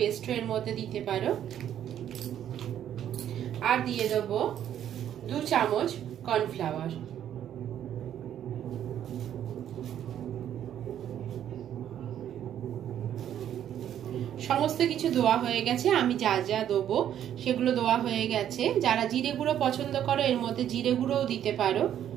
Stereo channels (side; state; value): left; quieter; 10.4 dB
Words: এর মধ্যে দিতে পারো। আর দিয়ে দেবো 2 চামচ কর্নফ্লাওয়ার। সমস্ত কিছু দেওয়া হয়ে গেছে। আমি যা যা দেবো সেগুলো দেওয়া হয়ে গেছে। যারা জিরে গুঁড়ো পছন্দ করো এর মধ্যে জিরে গুঁড়োও দিতে পারো।